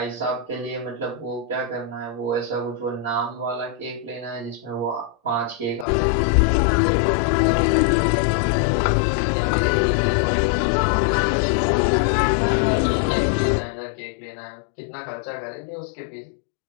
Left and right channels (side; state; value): right; drops out; at 5.9 s